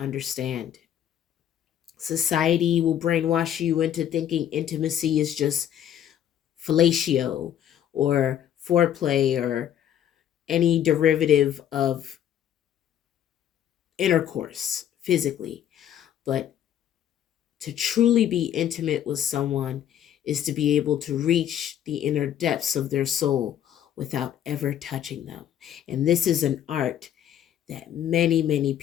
Society will brainwash you into thinking intimacy is just fellatio or foreplay or any derivative of intercourse physically. But to truly be intimate with someone is to be able to reach the inner depths of their soul without ever touching them. And this is an art that many, many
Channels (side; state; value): right; quieter; 10.3 dB